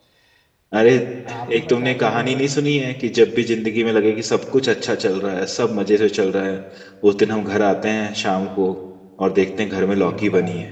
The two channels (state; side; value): identical; both; correlation 1.00